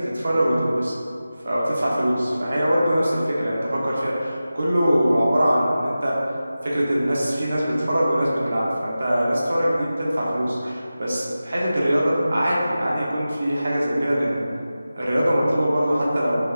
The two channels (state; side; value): inverted; both; correlation -0.95